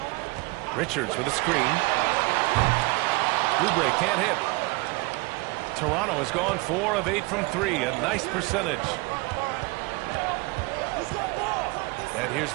Richards with a screen. Oubre can't hit. Toronto has gone 4 of 8 from 3. A nice percentage. And here's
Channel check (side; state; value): left; quieter; 25.1 dB